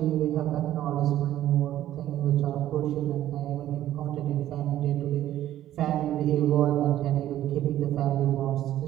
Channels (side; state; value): left; quieter; 12.9 dB